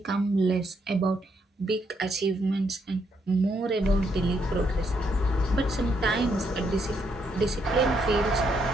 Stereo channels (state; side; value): normal; both; correlation 0.75